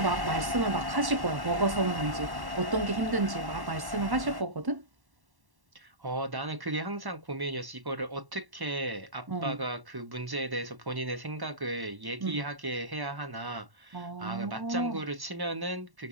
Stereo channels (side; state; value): left; late; 1.1 ms